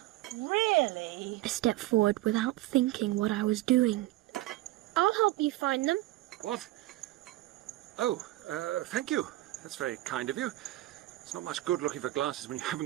really? I stepped forward without thinking what I was doing. I'll help you find them. What? Oh, thank you. That's very kind of you. It's not much good looking for glasses when you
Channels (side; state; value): left; quieter; 17.2 dB